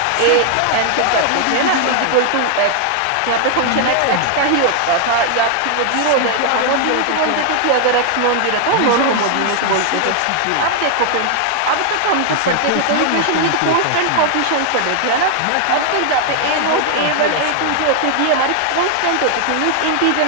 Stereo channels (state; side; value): different; both; correlation 0.00